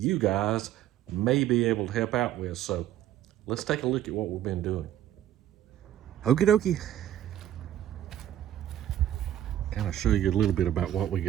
guys may be able to help out with. So let's take a look at what we've been doing. Okie dokie. Kind of show you a little bit about what we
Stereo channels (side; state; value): left; quieter; 12.0 dB